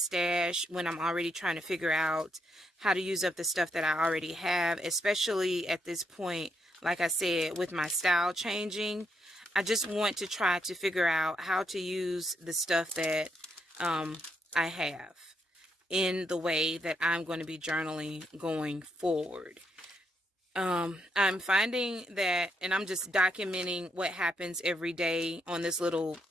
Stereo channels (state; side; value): normal; both; correlation 0.78